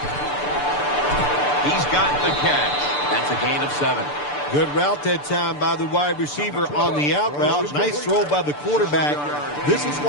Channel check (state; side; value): late; right; 6.8 ms